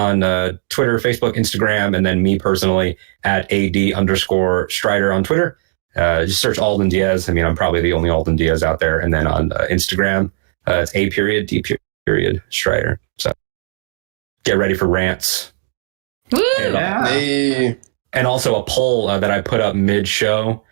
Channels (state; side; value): silent; left; digital silence